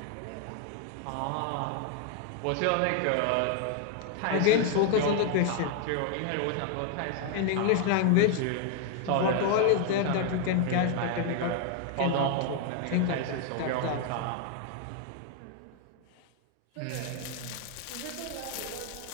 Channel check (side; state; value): both; different; correlation 0.00